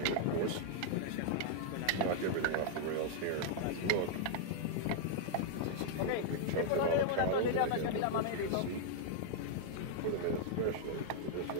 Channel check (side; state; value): both; different; correlation -0.01